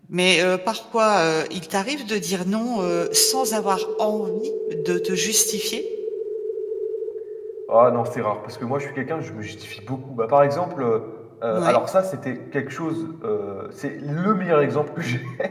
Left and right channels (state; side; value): identical; both; correlation 1.00